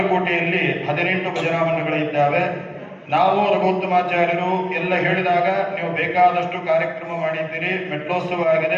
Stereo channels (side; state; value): both; identical; correlation 1.00